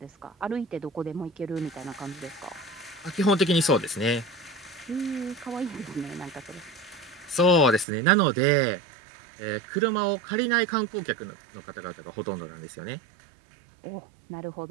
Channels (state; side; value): drops out; left; at 7.9 s